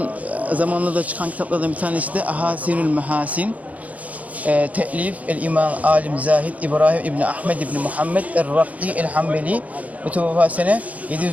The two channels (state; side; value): late; left; 0.071 ms